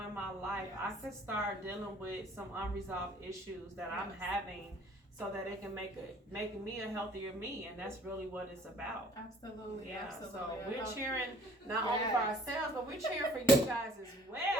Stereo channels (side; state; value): both; normal; correlation 0.56